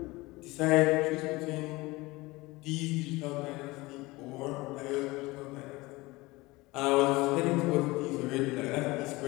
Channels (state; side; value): quieter; right; 21.7 dB